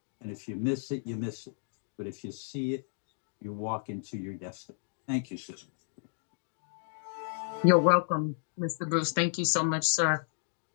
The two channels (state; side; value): silent; right; digital silence